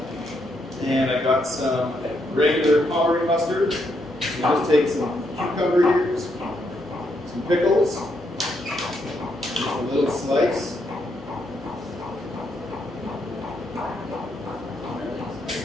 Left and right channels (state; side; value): normal; both; correlation 0.77